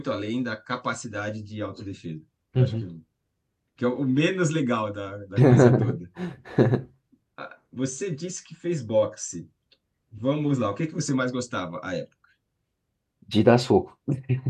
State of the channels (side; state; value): both; identical; correlation 1.00